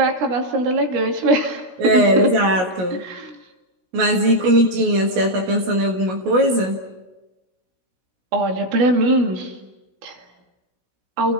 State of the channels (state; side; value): late; left; 16 ms